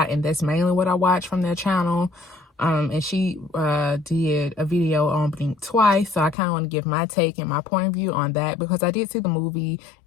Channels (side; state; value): right; drops out; at 6.4 s